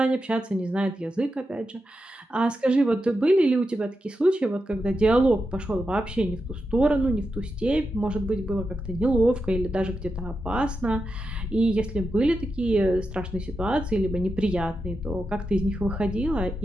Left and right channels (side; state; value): both; normal; correlation 0.88